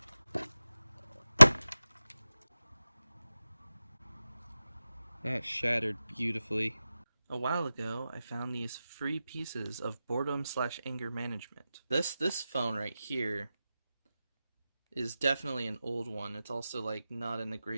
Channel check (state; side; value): inverted; both; correlation -0.94